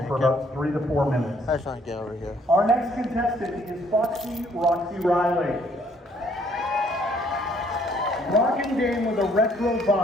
for about 3 to 4 minutes. I just want to get over here. Our next contestant is Foxy Roxy Riley. Rocking dame with a retro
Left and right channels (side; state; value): both; normal; correlation 0.65